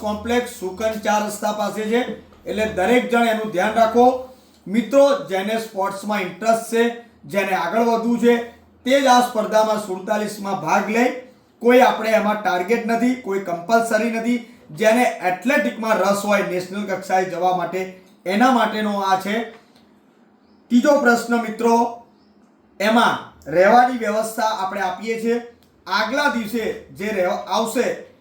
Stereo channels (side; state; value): both; identical; correlation 1.00